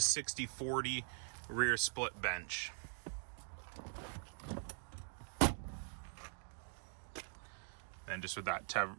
rear split bench. And just with that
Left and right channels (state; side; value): silent; left; digital silence